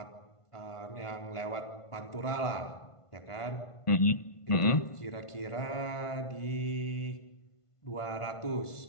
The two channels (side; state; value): right; late; 1.5 ms